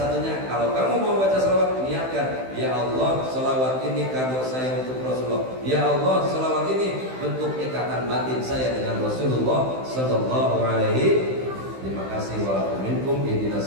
kalau kamu mau baca sholawat, niatkan, ya Allah, sholawat ini kado saya untuk Rasulullah. Ya Allah, sholawat ini bentuk ikatan batin saya dengan Rasulullah Sallallahu Alaihi. Terima kasih. Walaupun ihdinas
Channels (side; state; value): left; late; 15 ms